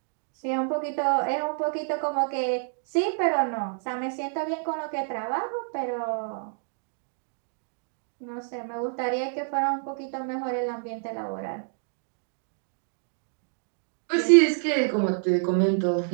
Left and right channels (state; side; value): silent; left; 59 dB below the other